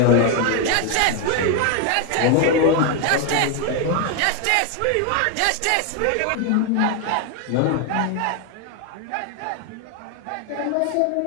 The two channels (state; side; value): different; both; correlation 0.01